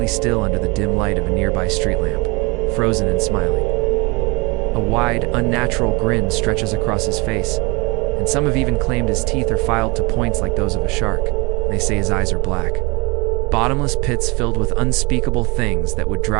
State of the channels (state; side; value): quieter; left; 26.9 dB